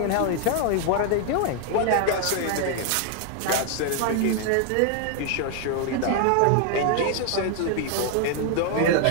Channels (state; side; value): different; both; correlation 0.00